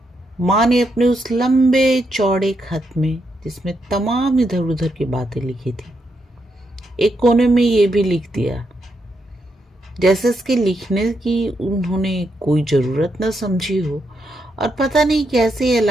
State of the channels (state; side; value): normal; both; correlation 0.81